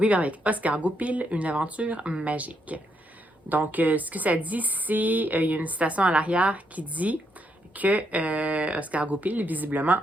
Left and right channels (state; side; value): normal; both; correlation 0.77